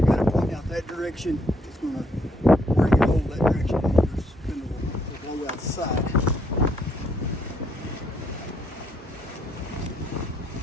going to point out that direction, it's going to, where you hold that direction, your spindle will blow out the side.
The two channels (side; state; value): both; normal; correlation 0.71